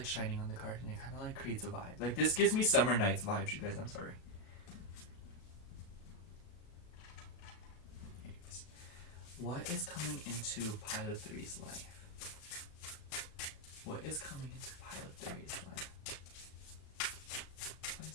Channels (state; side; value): late; right; 37 ms